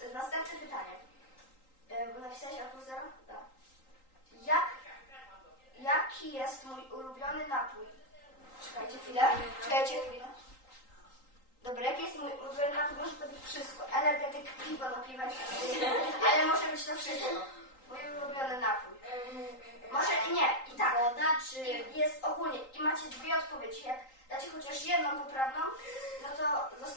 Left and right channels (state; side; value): late; right; 3.8 ms